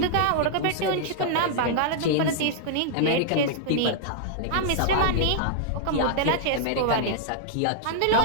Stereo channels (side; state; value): both; different; correlation -0.01